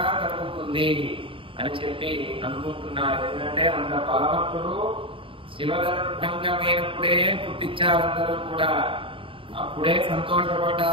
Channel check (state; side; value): late; left; 0.25 ms